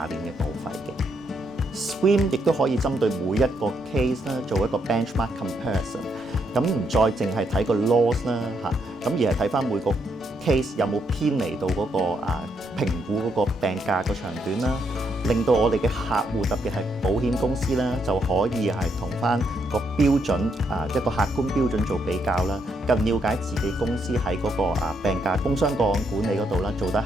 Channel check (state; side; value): normal; both; correlation 0.77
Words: 年嘅保費嘅。Swim 亦都可以針對每一個 case 啦，做一個 benchmark comparison。咁唔再淨係睇個 loss 啦咁而係睇翻每個 case 有冇偏離到嗰個評估嗰個病假個長短啦，令到我哋嘅客戶特別係保險公司啦，就可以係同翻個標準一個客觀標準做比較啦，更了解自己公司喺嗰個病假工傷個案管理嗰度啦，做得